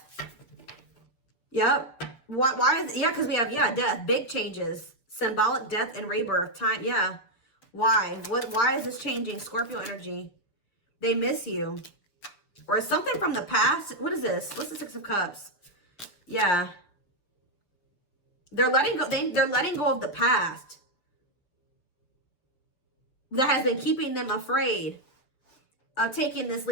Yep. Why is, yeah, because we have, death, big changes. Symbolic death and rebirth time. Yeah. Why? Why is this changing? Scorpio energy. They miss you. Or something from the past. What is this? What's the Six of Cups? Yeah. They're letting go. They're letting go of the past. That has been keeping them afraid of taking this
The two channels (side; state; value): right; late; 6.8 ms